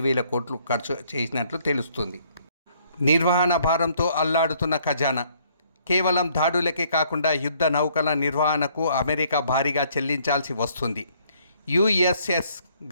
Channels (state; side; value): inverted; both; correlation -0.64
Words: కోట్లు ఖర్చు చేసినట్లు తెలుస్తుంది. నిర్వహణ భారంతో అల్లాడుతున్న ఖజానా. కేవలం దాడులకే కాకుండా యుద్ధ నౌకల నిర్వహణకు అమెరికా భారీగా చెల్లించాల్సి వస్తుంది. యుఎస్ఎస్